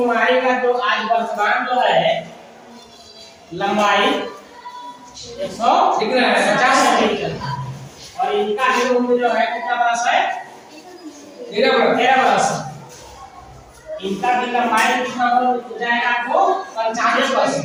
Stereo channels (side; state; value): both; identical; correlation 1.00